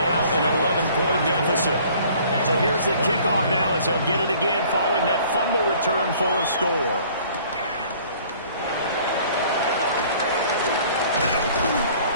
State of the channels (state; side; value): inverted; both; correlation -0.54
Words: an 11-point deficit. So here's the kickoff now as they'll get it again following that fumble return for a score.